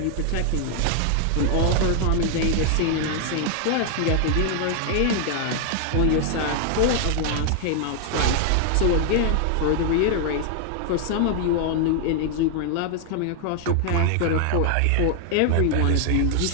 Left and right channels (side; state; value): both; different; correlation 0.00